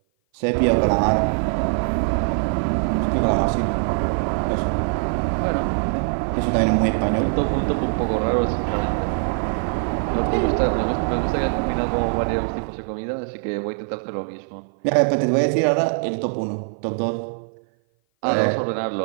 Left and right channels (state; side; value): silent; left; 56 dB below the other